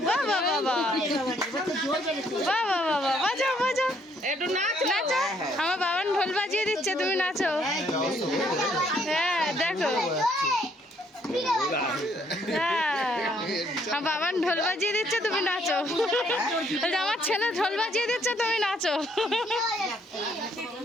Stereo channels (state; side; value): normal; both; correlation 0.68